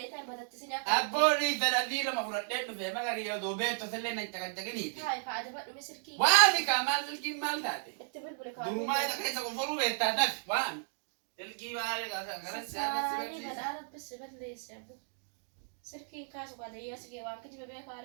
taa'i batatti si akka. abbooni fedhadii lama fudhadhee dhufe magari yoo doobeetto sillee na caqacaqiniiti Taa'i kaa adabadhu mi sirkii. waami kaa maal silkiin maal taate Itti bilbile kaa. durumaa isa keessa qoforuu beektaa daf waami silkii maali kanas Saarii badhaa rabbisi balleesse abbu. Sirkiin kaasu kaa dayyaa sigee waan kijiba beekaa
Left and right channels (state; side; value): silent; left; digital silence